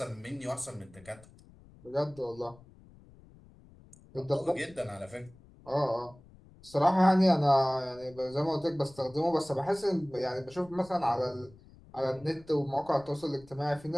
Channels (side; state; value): left; noise; rumble, 24 dB below the sound